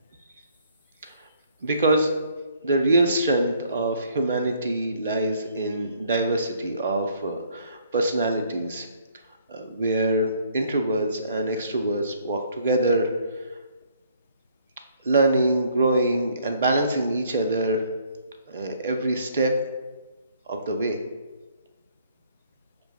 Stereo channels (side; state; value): both; inverted; correlation -0.63